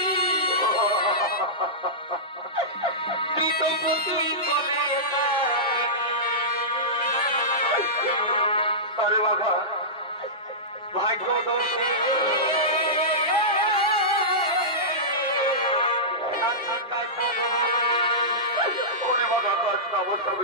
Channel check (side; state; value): both; normal; correlation -0.16